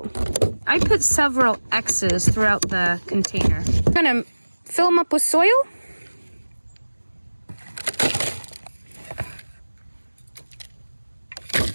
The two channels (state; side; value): inverted; both; correlation -1.00